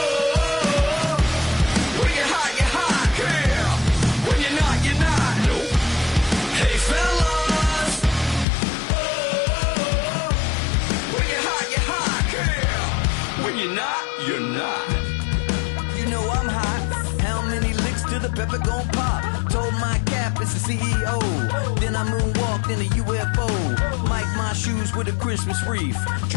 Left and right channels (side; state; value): right; drops out; at 8.5 s